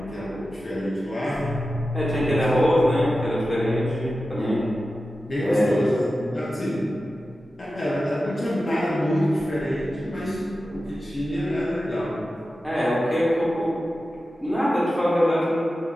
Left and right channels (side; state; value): both; normal; correlation 0.93